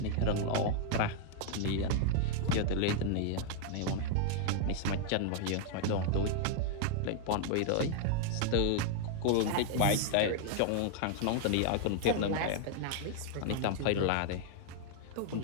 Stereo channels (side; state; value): both; different; correlation 0.00